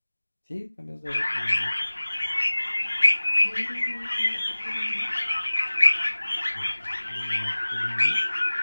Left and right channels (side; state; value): both; inverted; correlation -1.00